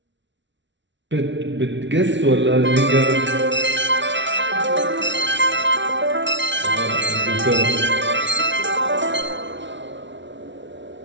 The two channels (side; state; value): left; late; 0.53 ms